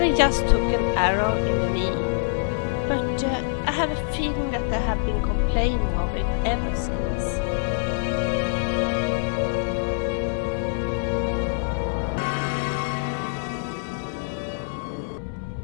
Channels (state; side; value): silent; right; 59 dB below the other